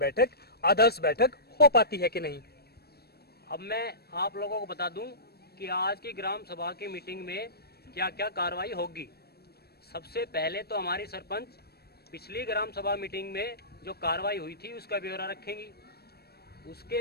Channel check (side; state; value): right; late; 0.46 ms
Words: आदर्श बैठक हो पाती है कि नहीं। अब मैं आप लोगों को बता दूं कि आज की ग्राम सभा की मीटिंग में क्या क्या कार्रवाई होगी। सबसे पहले तो हमारी सरपंच पिछली ग्राम सभा मीटिंग में जो कार्रवाई हुई थी उसका ब्यौरा रखेंगी।